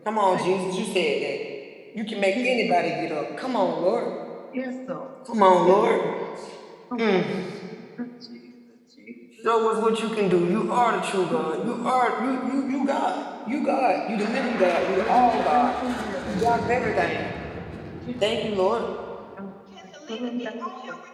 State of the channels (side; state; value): both; identical; correlation 1.00